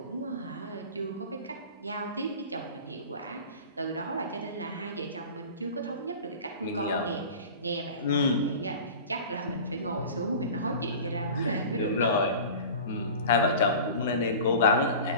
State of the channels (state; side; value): inverted; both; correlation -0.37